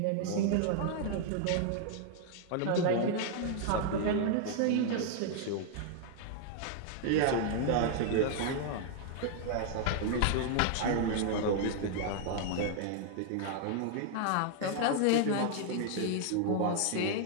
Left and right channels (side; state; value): both; different; correlation 0.00